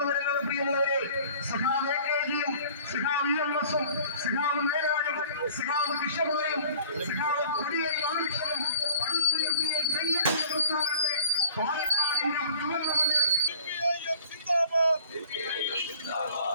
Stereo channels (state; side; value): inverted; both; correlation -0.49